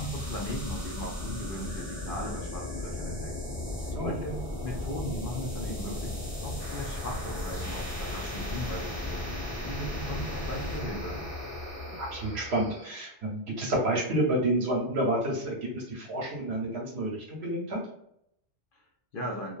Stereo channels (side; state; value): both; normal; correlation 0.12